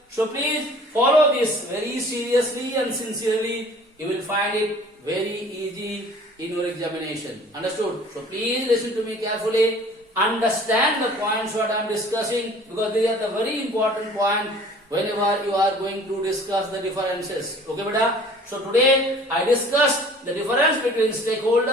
So please follow this very seriously and sincerely. You will find it very easy in your examination. Understood? So please listen to me carefully. Understand the points what I am discussing, because they are the very important point whenever you are going to discuss the differences. Okay, beta? So today I discussed the difference between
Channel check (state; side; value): normal; both; correlation 0.49